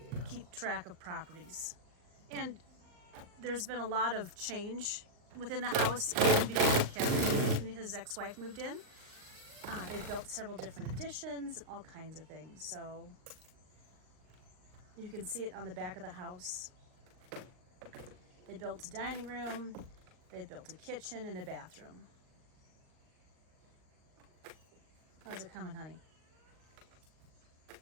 keep track of properties. And there's been a lot of change within the house even before Kevin and his ex-wife moved in. They built several different additions, all kinds of things. So you can see it on the back of the house. They built a dining room, they built a kitchen and a bathroom. How's it coming, honey?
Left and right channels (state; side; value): late; left; 39 ms